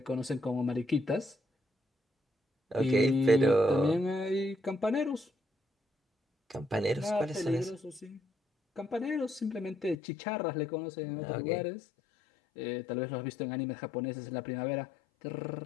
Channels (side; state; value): right; drops out; at 10.0 s